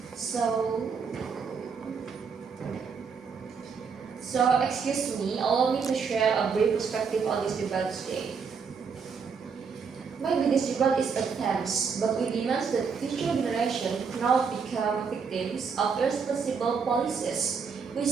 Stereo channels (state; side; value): quieter; left; 5.8 dB